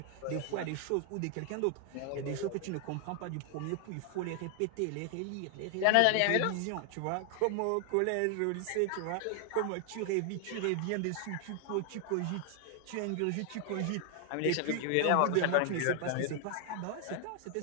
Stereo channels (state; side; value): different; both; correlation 0.00